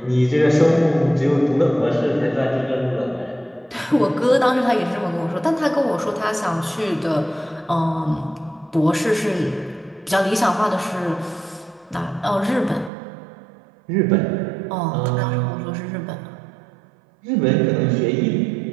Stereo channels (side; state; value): left; drops out; at 12.9 s